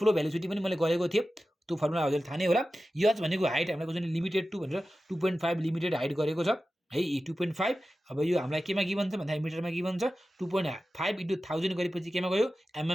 भेलोसिटी पनि मैले गरेको थिएँ। त्यो फर्मुला हजुरले थाहा नै होला। H भनेको हाइट हामीलाई क्वेसनले लिमिटेड टु भनेर 2.5 लिमिटेड हाइट गरेको छ है 2.5। अब यो हामीलाई केमा गिभन छ भन्दाखेरि मिटरमा गिभन छ। 2.5 × 1000 गरेपछि केमा गयो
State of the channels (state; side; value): normal; both; correlation 0.94